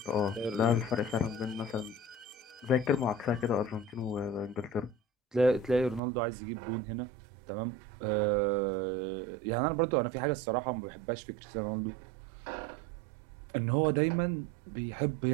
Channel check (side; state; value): left; drops out; at 6.0 s